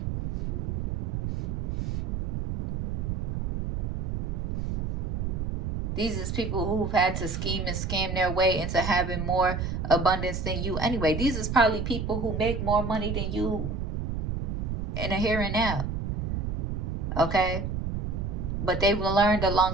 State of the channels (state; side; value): noise; right; rumble, 2 dB below the sound